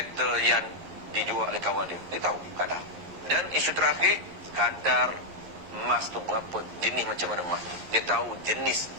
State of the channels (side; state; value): left; late; 11 ms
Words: yang dijual oleh kawan dia. Dia tahu kadar. Dan isu terakhir, kadar emas tu berapa, jenis macam mana emas. Dia tahu jenis